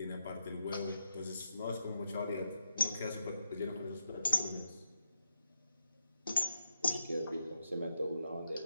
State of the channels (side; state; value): both; inverted; correlation -0.84